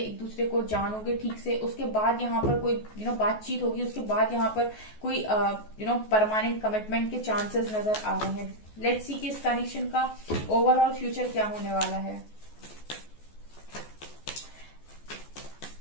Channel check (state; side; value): late; right; 14 ms